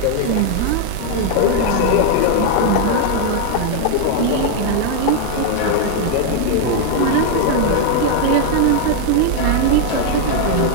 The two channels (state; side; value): different; both; correlation 0.00